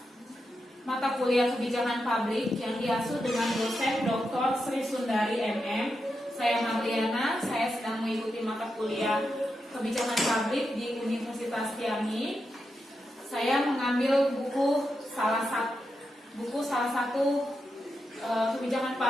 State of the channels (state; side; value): normal; both; correlation 0.87